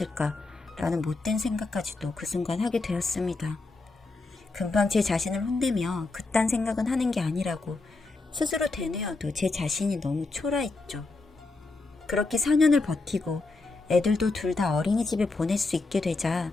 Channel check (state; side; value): quieter; right; 3.5 dB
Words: 라는 못된 생각까지도 그 순간 하게 되었습니다. 금방 제 자신을 혼내며 그딴 생각은 하는 게 아니라고 스스로 되뇌어도 제 자신이 너무 초라했죠. 그렇게 4년을 버티고 애들도 둘 다 어린이집에 보낼 수 있게 되자